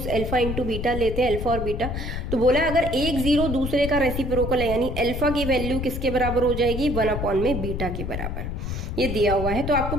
अल्फा इंटू बीटा लेते हैं, अल्फा और बीटा। तो बोला अगर एक जीरो दूसरे का रेसिप्रोकल है, यानी अल्फा की वैल्यू किसके बराबर हो जाएगी 1 अपॉन में बीटा के बराबर, ये दिया हुआ है। तो आपको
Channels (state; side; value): noise; left; rumble, 4 dB below the sound